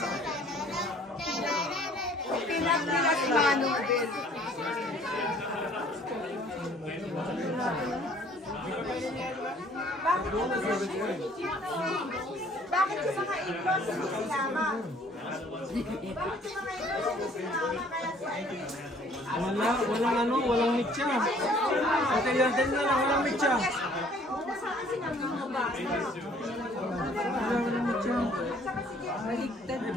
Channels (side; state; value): both; normal; correlation 0.57